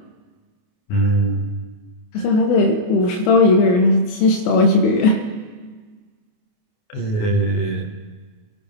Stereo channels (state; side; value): late; right; 28 ms